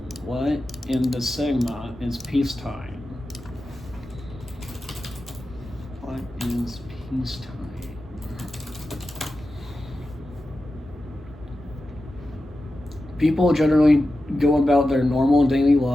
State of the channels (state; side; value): normal; both; correlation 0.92